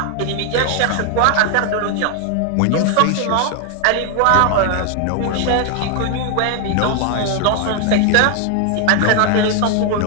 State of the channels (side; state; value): both; different; correlation 0.00